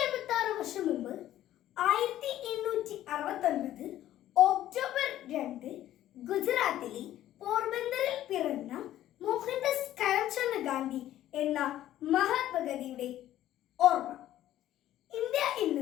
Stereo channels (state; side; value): quieter; right; 13.0 dB